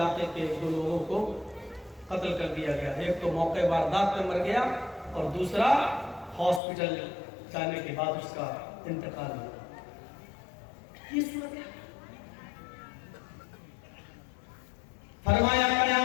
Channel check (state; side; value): drops out; right; at 6.6 s